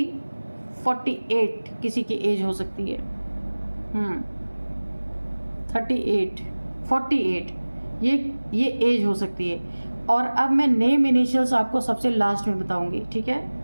48 किसी की एज हो सकती है। 38, 48 ये एज हो सकती है। और अब मैं नेम इनिशियल्स आपको सबसे लास्ट में बताऊंगी, ठीक है?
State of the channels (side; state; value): both; inverted; correlation -1.00